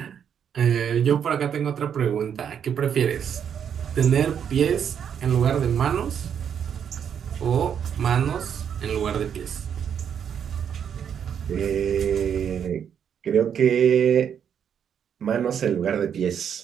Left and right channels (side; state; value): left; quieter; 8.2 dB